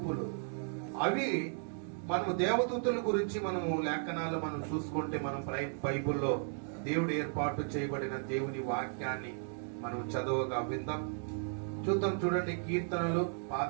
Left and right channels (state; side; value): silent; left; digital silence